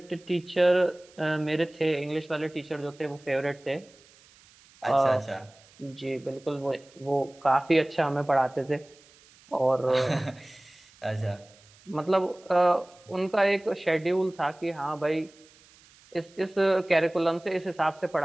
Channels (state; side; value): noise; right; hiss, 27 dB below the sound